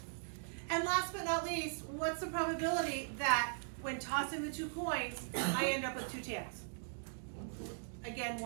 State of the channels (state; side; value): silent; left; digital silence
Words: And last but not least, what's the probability that when tossing the 2 coins, I end up with 2 tails? Again,